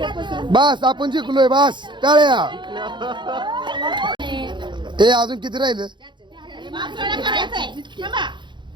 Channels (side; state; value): left; late; 0.23 ms